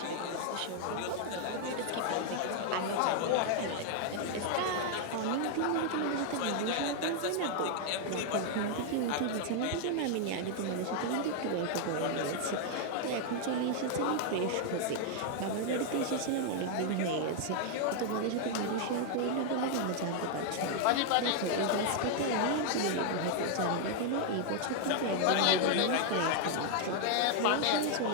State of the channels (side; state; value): both; different; correlation 0.00